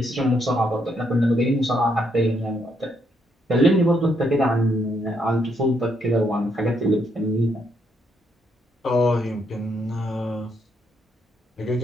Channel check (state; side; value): normal; both; correlation 0.75